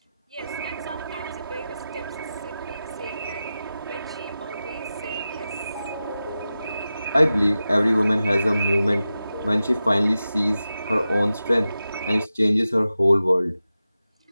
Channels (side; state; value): both; inverted; correlation -0.93